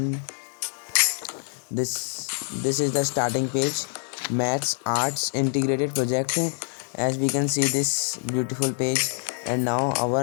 this is the starting page, maths arts integrated project. As we can see this beautiful page, and now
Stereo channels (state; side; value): silent; right; 61 dB below the other